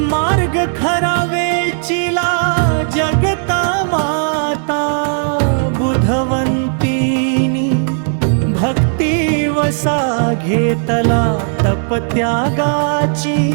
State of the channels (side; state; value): left; silent; digital silence